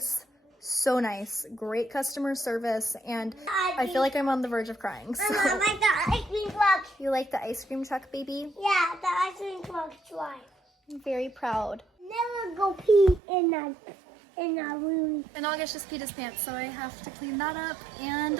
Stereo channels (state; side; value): drops out; left; at 13.2 s